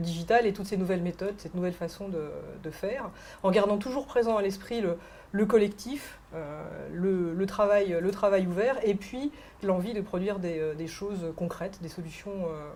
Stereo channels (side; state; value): both; identical; correlation 1.00